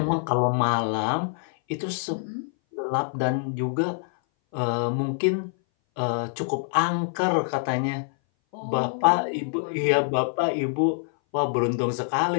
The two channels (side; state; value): right; silent; 59 dB below the other